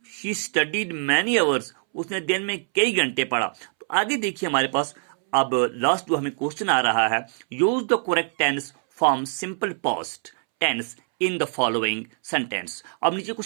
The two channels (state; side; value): silent; left; 63 dB below the other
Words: शी स्टडीड मैनी आवर्स, उसने दिन में कई घंटे पढ़ा। तो आगे देखिए हमारे पास अब लास्ट जो हमें क्वेश्चन आ रहा है, use the correct tense from simple past tense in the following sentence. अब नीचे